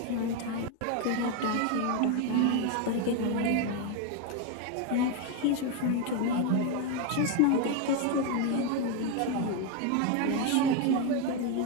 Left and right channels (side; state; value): both; different; correlation 0.02